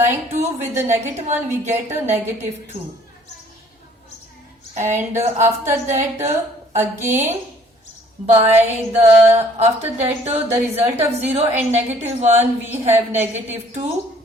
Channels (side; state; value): both; normal; correlation 0.58